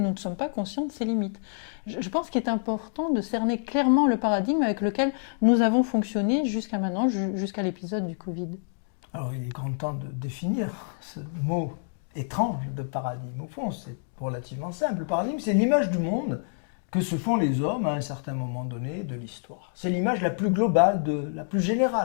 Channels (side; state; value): right; silent; digital silence